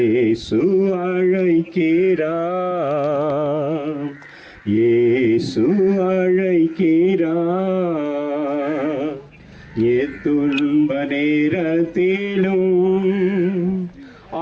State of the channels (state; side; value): identical; both; correlation 1.00